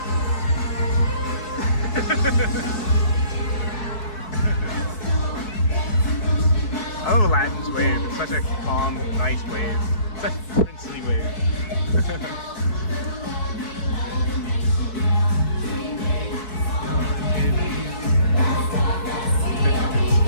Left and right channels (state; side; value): late; right; 4.6 ms